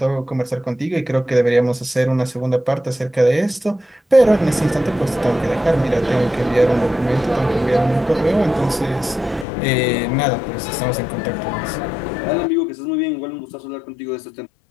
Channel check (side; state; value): right; drops out; at 9.5 s